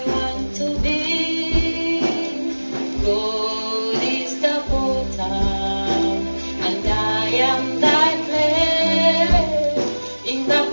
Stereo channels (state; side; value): inverted; both; correlation -1.00